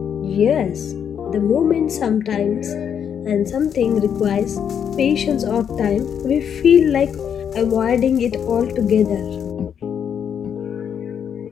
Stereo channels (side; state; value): right; quieter; 8.1 dB